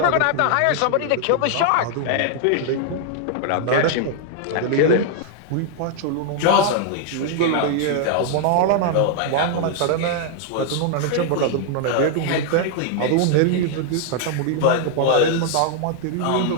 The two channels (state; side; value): different; both; correlation 0.00